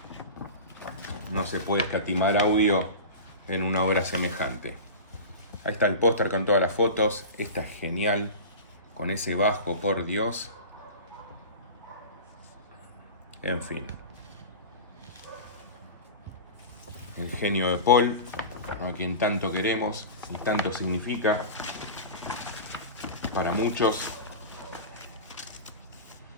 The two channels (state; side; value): inverted; both; correlation -0.30